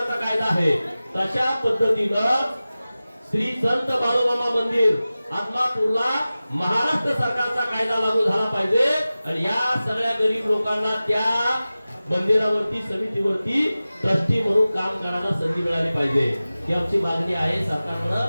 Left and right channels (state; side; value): inverted; both; correlation -0.96